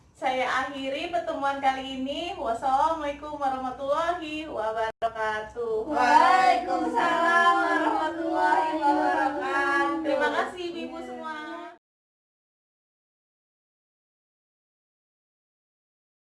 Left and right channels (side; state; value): both; identical; correlation 1.00